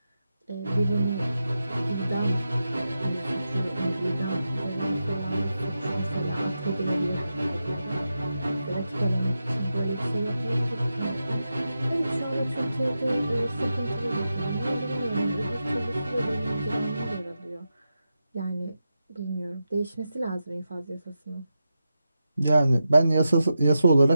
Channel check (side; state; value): both; inverted; correlation -0.89